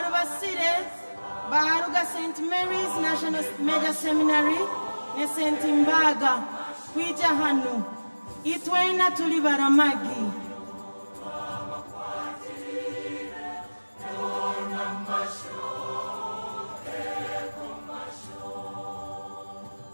baruga St. Mary's National Major Seminary ne St. Mbaga kwija hano itwena tuli baramagi.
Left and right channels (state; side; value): inverted; both; correlation -1.00